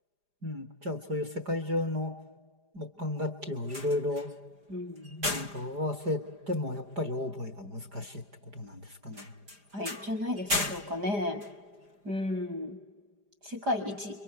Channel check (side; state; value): left; late; 4.9 ms